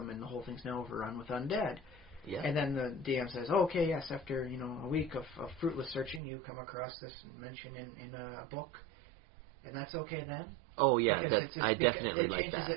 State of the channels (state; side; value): drops out; left; at 6.2 s